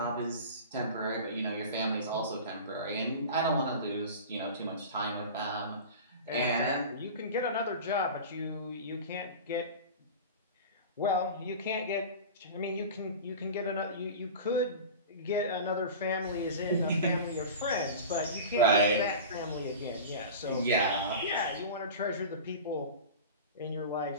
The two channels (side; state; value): both; inverted; correlation -0.33